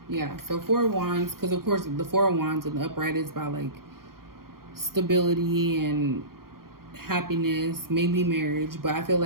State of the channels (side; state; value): left; late; 0.92 ms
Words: Yeah, so Four of Wands, because of course the Four of Wands in the upright is about like stability and happiness, maybe marriage. But I feel